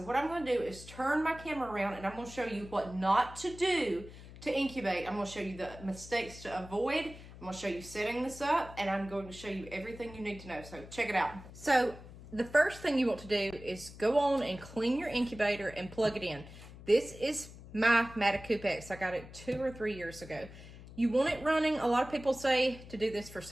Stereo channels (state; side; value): noise; left; hum, 16 dB below the sound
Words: what I'm going to do is turn my camera around, and I'm going to show you what not to do to incubate. I'm going to show you the mistakes to avoid. I'm going to show you setting this up, and I'm going to show you everything you need to know. So check it out. So the first thing you want to do is go on and clean your incubator and plug it in. This is my Matacoop X. I got it 2 or 3 years ago. You want it running. A lot of people say to do this for